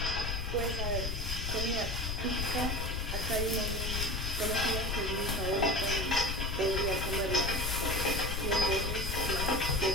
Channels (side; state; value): left; noise; rumble, 2 dB below the sound